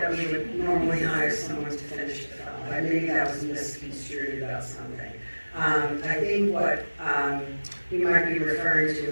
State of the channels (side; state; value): both; inverted; correlation -1.00